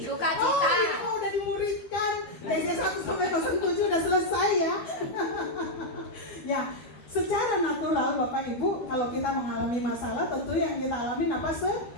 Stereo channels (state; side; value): late; right; 12 ms